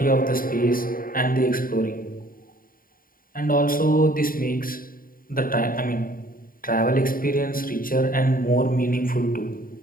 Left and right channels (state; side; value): late; right; 0.41 ms